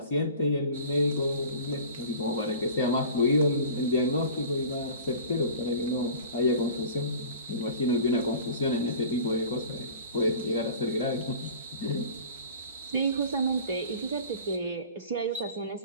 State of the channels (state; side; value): inverted; both; correlation -0.41